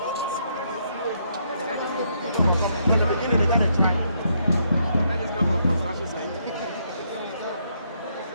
From the beginning, they got to try.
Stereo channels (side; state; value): both; inverted; correlation -0.74